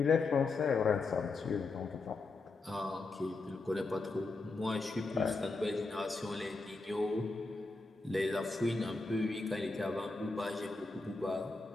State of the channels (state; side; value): quieter; right; 3.6 dB